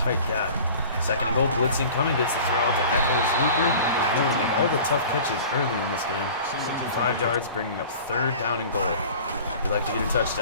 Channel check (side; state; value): both; inverted; correlation -0.42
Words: gap. 2nd and goal, blitzing coming, gets the throw out to Eccles Looper. He's known to make all the tough catches early in this game. 5 yards, bringing up 3rd down and goal. We'd like to get a